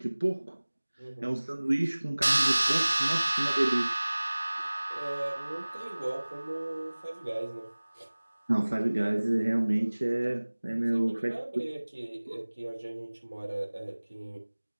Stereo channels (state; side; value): inverted; both; correlation -1.00